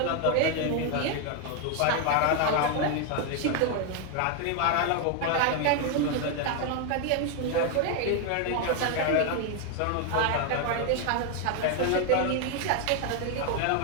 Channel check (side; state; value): both; different; correlation 0.01